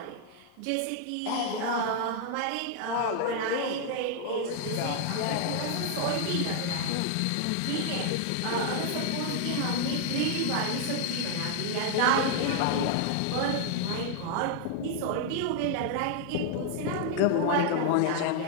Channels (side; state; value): both; different; correlation 0.00